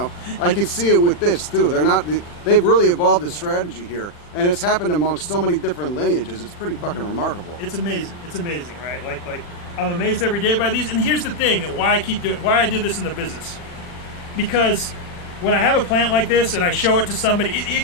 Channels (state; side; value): late; right; 40 ms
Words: I can see it with this too. They've really evolved a strategy here. And it's happened amongst so many different lineages. It's pretty fucking remarkable. It's amazing. It's amazing, right? Like I'm amazed every day by these. And here's the thing: why I did this in the business, because when I have a plant like this and I show it to somebody,